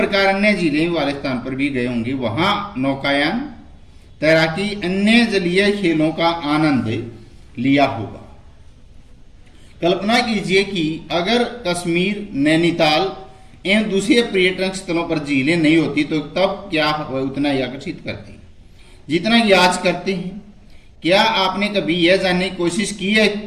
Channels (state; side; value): identical; both; correlation 1.00